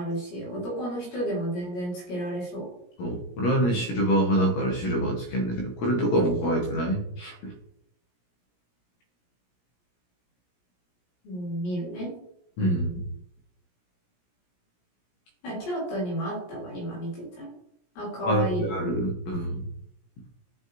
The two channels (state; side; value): late; right; 17 ms